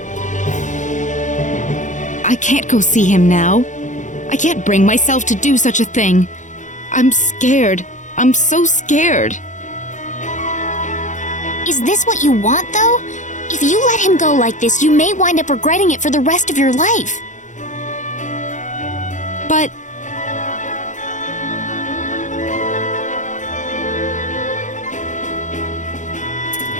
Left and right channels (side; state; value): right; late; 0.36 ms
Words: I can't go see him now. I can't bring myself to do such a thing. I'm scared. I'm so scared. Is this what you want, though? If you let him go like this, you may wind up regretting it for the rest of your life. But...